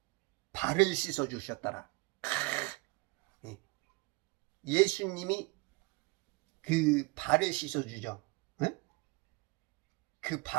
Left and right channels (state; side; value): quieter; left; 25.7 dB